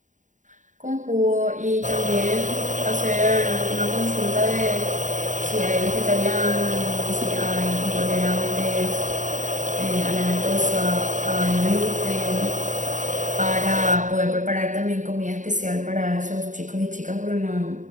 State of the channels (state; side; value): late; left; 0.36 ms